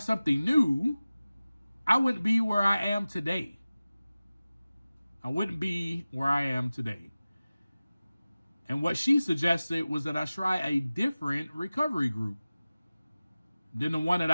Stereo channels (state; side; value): inverted; both; correlation -0.97